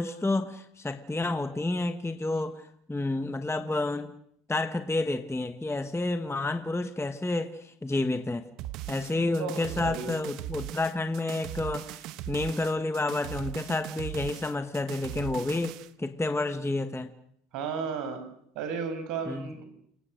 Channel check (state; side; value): normal; both; correlation 0.79